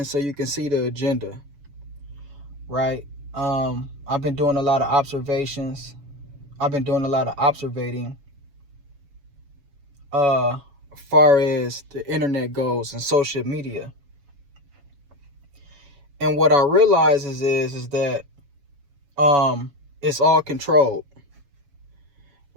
So You Can See the Agenda." Right? I've been doing a lot of observations. I've been doing a lot of observating. As far as the internet goes and social media. And what I realize is that it's all controlled,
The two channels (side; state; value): left; late; 7.1 ms